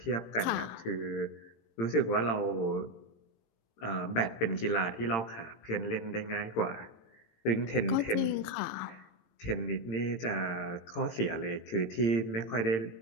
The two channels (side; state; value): right; late; 18 ms